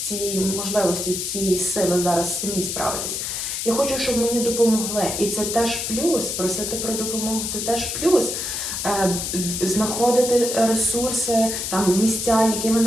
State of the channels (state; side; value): noise; left; hiss, 3 dB below the sound